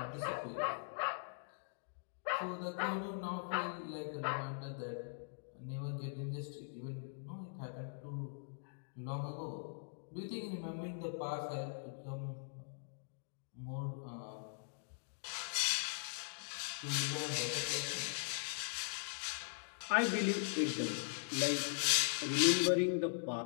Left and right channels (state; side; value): silent; right; digital silence